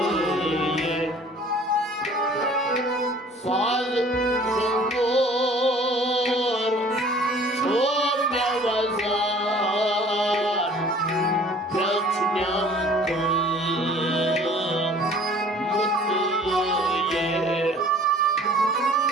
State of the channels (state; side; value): normal; both; correlation 0.50